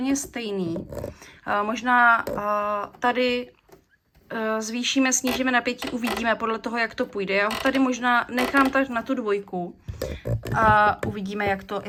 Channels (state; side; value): identical; both; correlation 1.00